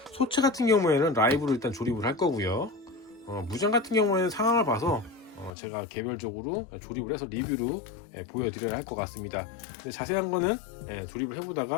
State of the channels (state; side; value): drops out; right; at 5.5 s